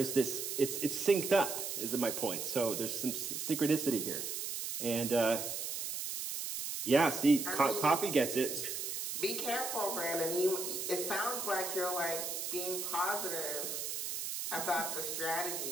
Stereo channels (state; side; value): noise; right; hiss, 4 dB below the sound